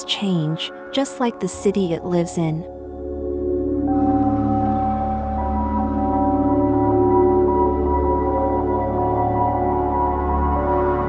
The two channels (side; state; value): both; identical; correlation 1.00